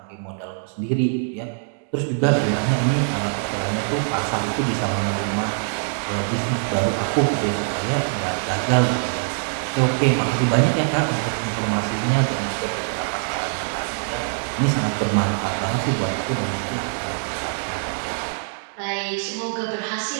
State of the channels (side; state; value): left; silent; digital silence